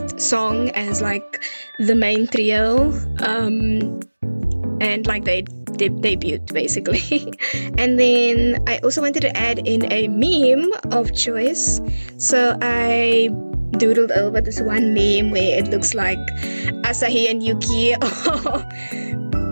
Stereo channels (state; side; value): inverted; both; correlation -1.00